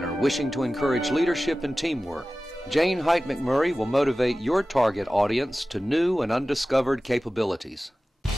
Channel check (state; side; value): normal; both; correlation 0.96